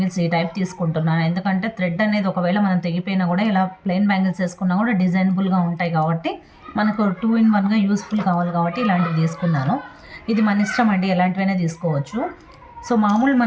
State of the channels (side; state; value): both; identical; correlation 1.00